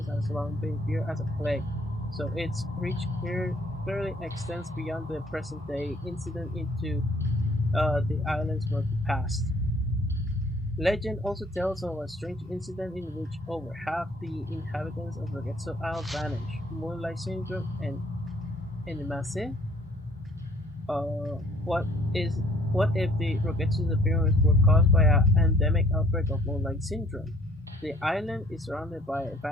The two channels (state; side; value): normal; both; correlation 0.60